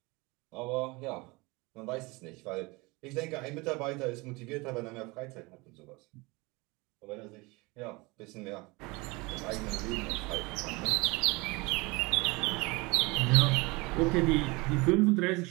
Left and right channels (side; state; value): left; quieter; 25.0 dB